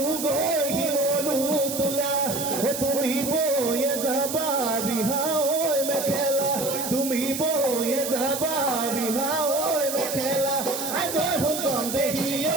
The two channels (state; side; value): noise; right; hiss, 5 dB below the sound